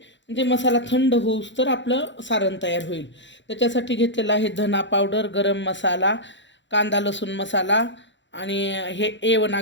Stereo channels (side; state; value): right; late; 0.53 ms